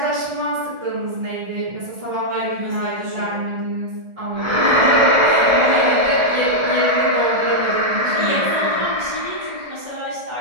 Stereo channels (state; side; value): late; left; 1.4 ms